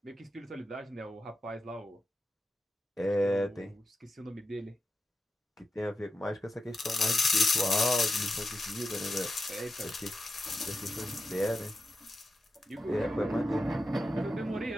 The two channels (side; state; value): both; normal; correlation 0.89